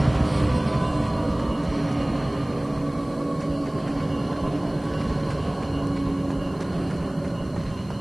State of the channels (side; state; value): left; noise; hiss, 28 dB below the sound